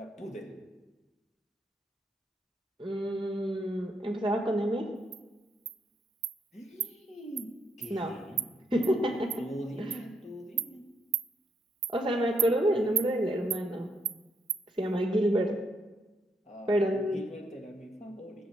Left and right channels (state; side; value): normal; both; correlation 0.77